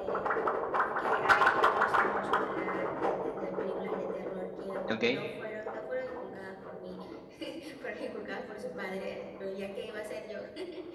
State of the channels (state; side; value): identical; both; correlation 1.00